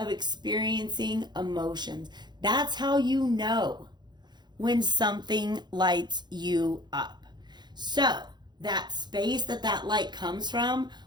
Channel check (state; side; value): late; left; 0.21 ms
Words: experiencing emotions. That's how you know when something lights you up. So that space that light comes from